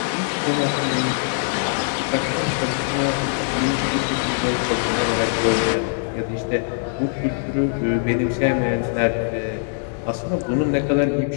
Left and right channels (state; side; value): silent; right; digital silence